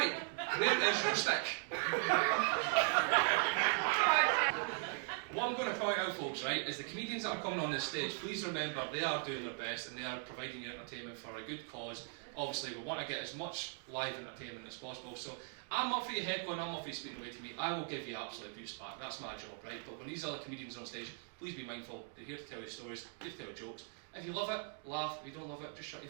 Where is your stick? What I'm going to point out, folks, right, is the comedians that are coming on this stage, please remember they are doing their best and they are providing you entertainment for a good cause. Obviously, we want to get as much live entertainment as possible, so I'm up for your heckling, I'm up for you speaking away to me. I will give you absolute abuse back, that's my job, right? But when these other comedians are on stage, please be mindful. They're here to tell you stories, here to tell you jokes. If you love it, laugh. If you don't love it, just shut your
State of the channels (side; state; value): left; silent; 51 dB below the other